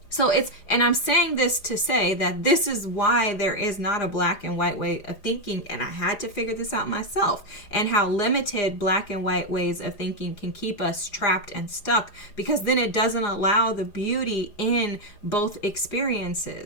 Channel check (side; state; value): right; late; 4.9 ms